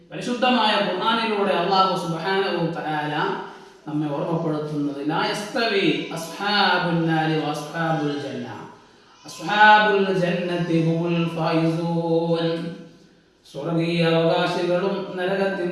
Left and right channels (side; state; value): both; identical; correlation 1.00